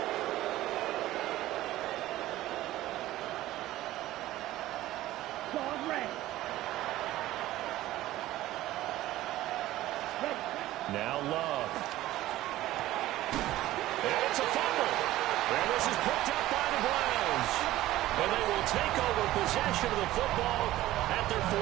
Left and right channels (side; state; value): left; quieter; 15.5 dB